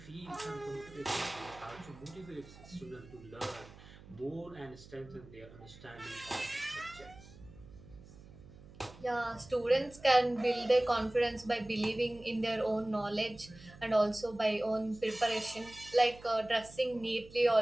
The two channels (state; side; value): noise; right; hum, 19 dB below the sound